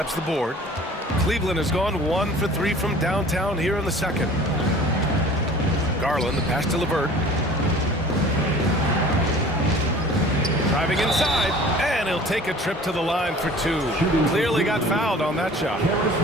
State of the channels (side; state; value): both; normal; correlation 0.46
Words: the board. Cleveland has gone 1 for 3 from downtown here in the second. Garland, the pass to LeVert. Driving inside, and he'll take a trip to the line for 2. Clearly got fouled on that shot.